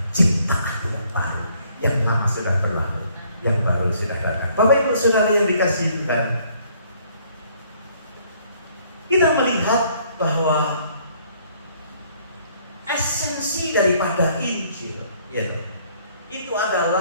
ciptaan yang baru, yang lama sudah berlalu, yang baru sudah datang. Bapak Ibu Saudara yang dikasihi Tuhan, kita melihat bahwa esensi daripada Injil, ya, itu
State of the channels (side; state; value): both; inverted; correlation -0.63